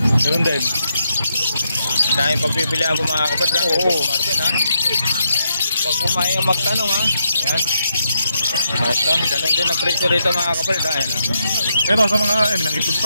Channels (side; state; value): both; inverted; correlation -0.81